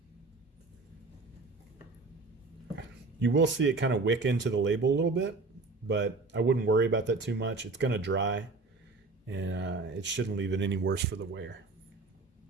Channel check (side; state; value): left; quieter; 3.6 dB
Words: You will see it kind of wick into the label a little bit, but I wouldn't worry about that too much. It's going to dry, and it shouldn't leave it any worse for the wear.